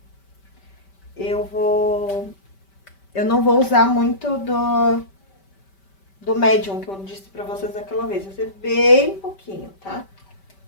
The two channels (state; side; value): late; right; 5.2 ms